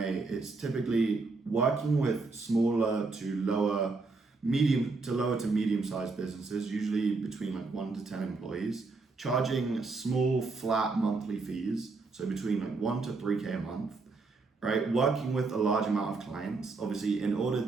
it's typically working with smaller to lower to medium-sized businesses, usually between like 1 to 10 employees, charging small flat monthly fees, so between like 1 to 3K a month, right? Working with a large amount of clients. Obviously, in order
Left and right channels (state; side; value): quieter; left; 3.9 dB